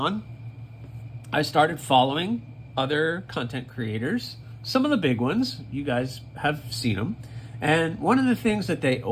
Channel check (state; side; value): identical; both; correlation 1.00